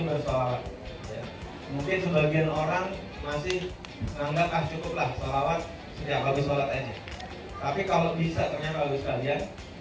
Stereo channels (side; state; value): both; identical; correlation 1.00